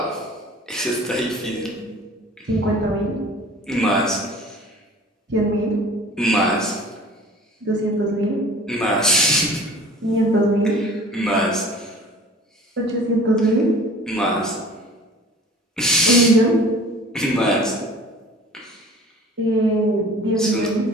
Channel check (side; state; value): both; normal; correlation 0.45